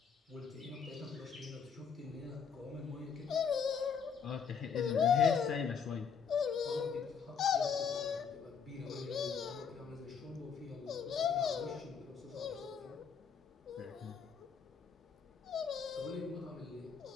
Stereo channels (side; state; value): right; quieter; 6.5 dB